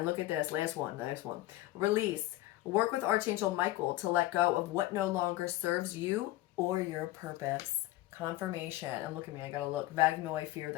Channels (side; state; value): right; quieter; 16.6 dB